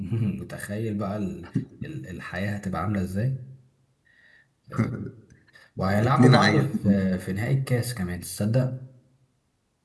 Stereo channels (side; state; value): both; identical; correlation 1.00